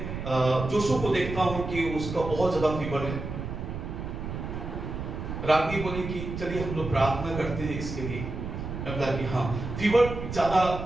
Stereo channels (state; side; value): noise; right; rumble, 6 dB below the sound